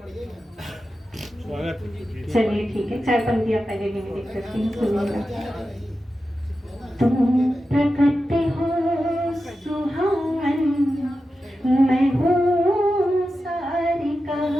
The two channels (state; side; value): normal; both; correlation 0.91